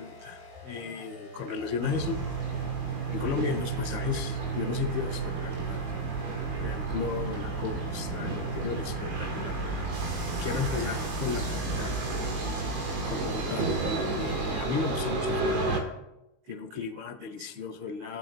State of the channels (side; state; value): left; late; 19 ms